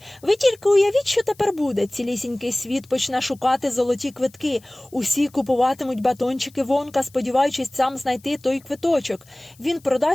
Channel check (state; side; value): noise; left; hiss, 28 dB below the sound